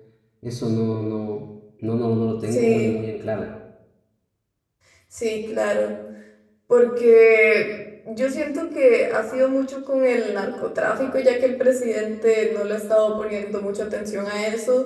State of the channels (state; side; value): identical; both; correlation 1.00